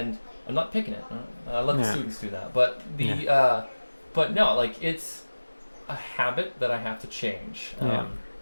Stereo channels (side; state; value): both; inverted; correlation -1.00